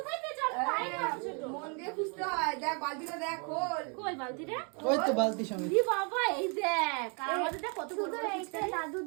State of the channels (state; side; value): quieter; left; 36.5 dB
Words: পেয়েছো? আমি পাই না এত ছোট। মন দিয়ে খুঁজতে হয়। দেখ বালতিটা দেখ, খোল। কই বালতিটা? ওই তো বালতি সমেত। তুলি বাবা এই দেখ। আর আমাদের দেখ কত বড় বড় এইটা পিচকারি। দাদু